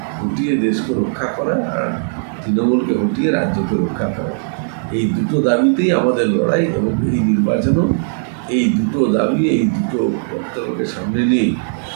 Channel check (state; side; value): silent; left; digital silence